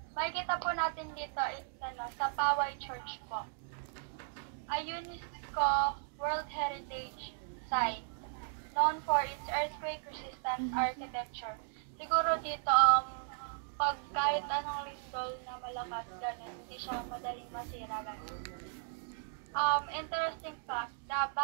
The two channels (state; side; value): silent; left; digital silence